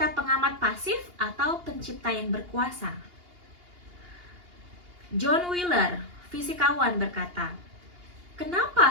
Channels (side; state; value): left; late; 2.8 ms